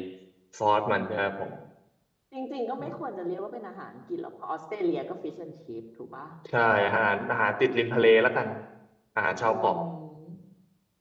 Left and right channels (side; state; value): both; identical; correlation 1.00